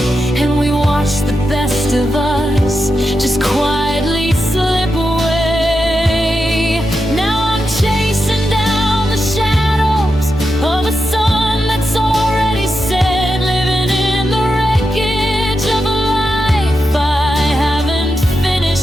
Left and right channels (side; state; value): both; normal; correlation 0.87